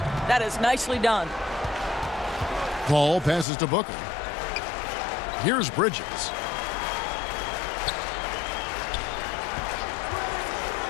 That is nicely done. Paul passes to Booker. Here's Bridges.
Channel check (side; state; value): right; drops out; at 3.5 s